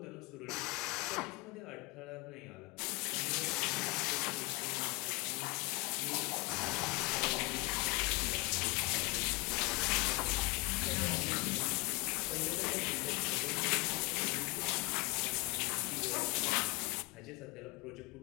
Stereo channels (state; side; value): quieter; right; 25.9 dB